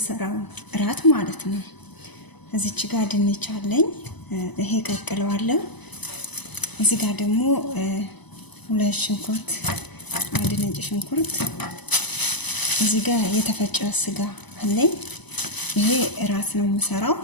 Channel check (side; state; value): right; late; 0.99 ms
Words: እራት ማለት ነው። እዚች ጋር ድንች አለኝ፣ ይሄ ቀቅለዋለሁ። እዚህ ጋር ደግሞ ሁለት ሽንኩርት፣ አንድ ነጭ ሽንኩርት፣ እዚህ ጋር የተፈጨ ስጋ አለኝ። ይሄ እራት ነው የምሰራው።